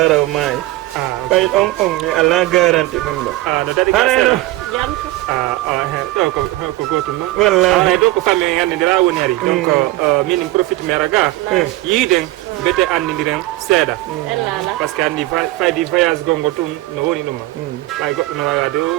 raw maayi ɓay ɗon on mi ala garanti ɗum ɗo no daɗi harayno ɗo ko gotum noon wallahi ɗo ko famille gandidira woni ari donc min profite mi raga yiiden bete andidiren seeɗa par ce que andi faydi voyage gongo tun no woni ɗuma ɓay goɗɗo no wawa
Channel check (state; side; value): quieter; left; 18.0 dB